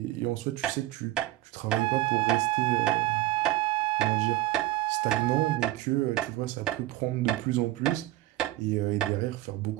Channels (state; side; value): quieter; left; 16.1 dB